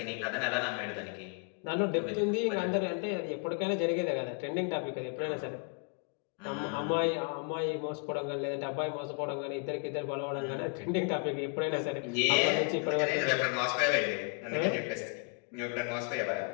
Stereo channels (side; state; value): right; quieter; 36.4 dB